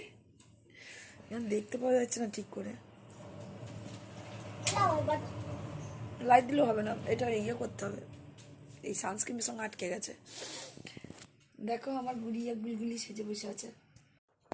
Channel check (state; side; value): identical; both; correlation 1.00